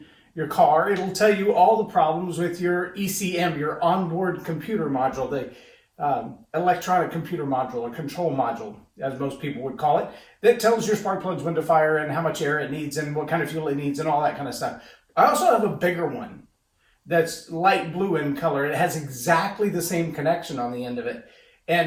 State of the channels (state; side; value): identical; both; correlation 1.00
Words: your car, it'll tell you all the problems with your ECM, your onboard computer module, the electronic computer module, or control module, as most people would call it, that tells your spark plugs when to fire and how much air it needs and what kind of fuel it needs and all that kind of stuff. I also have a bigger one that's light blue in color. It has exactly the same connection on the end of it.